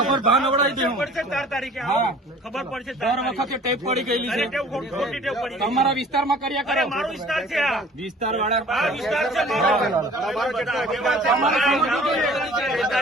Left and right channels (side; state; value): both; normal; correlation 0.49